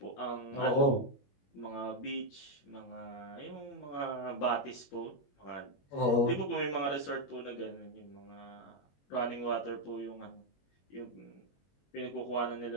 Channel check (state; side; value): late; right; 21 ms